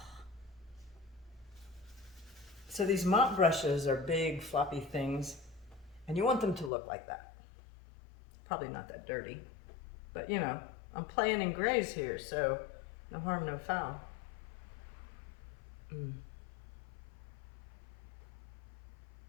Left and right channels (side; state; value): right; drops out; at 6.7 s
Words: So these mop brushes are big, floppy things, and you want them to look like that. Probably not that dirty, but you know, I'm playing in grays here, so no harm, no foul. And